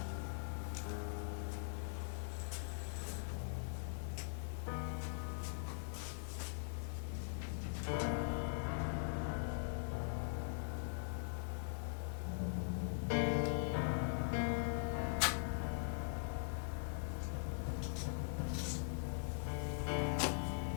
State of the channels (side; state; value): right; silent; digital silence